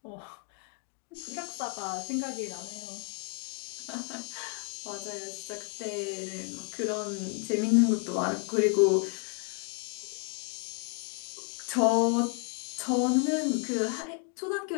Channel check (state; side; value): quieter; right; 38.3 dB